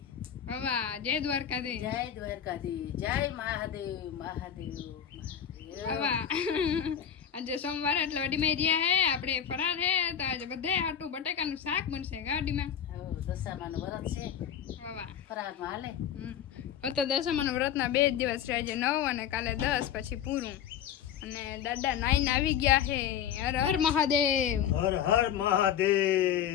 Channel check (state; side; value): quieter; right; 9.1 dB